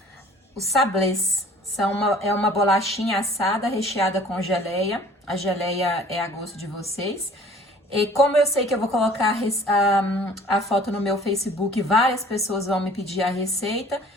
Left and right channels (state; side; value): normal; both; correlation 0.51